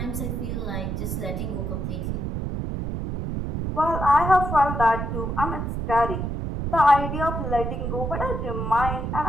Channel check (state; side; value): noise; right; rumble, 3 dB below the sound